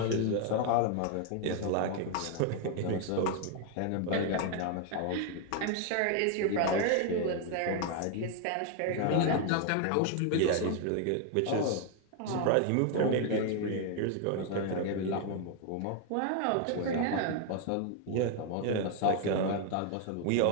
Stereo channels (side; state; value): both; different; correlation 0.00